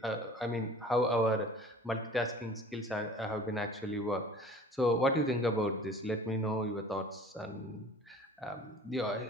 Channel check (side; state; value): both; normal; correlation 0.46